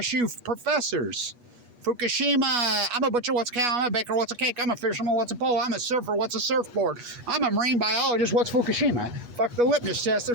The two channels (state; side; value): late; left; 8.3 ms